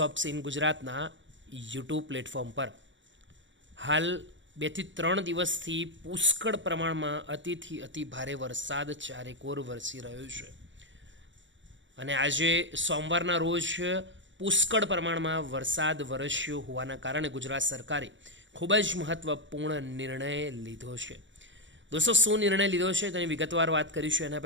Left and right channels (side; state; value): left; late; 0.54 ms